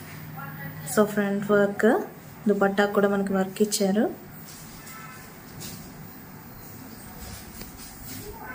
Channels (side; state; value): both; identical; correlation 1.00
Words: So front work, dupatta కూడా మనకి వర్క్ ఇచ్చారు.